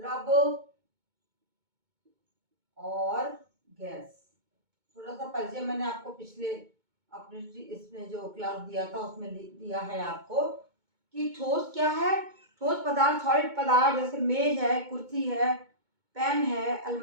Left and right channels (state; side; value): late; left; 2.2 ms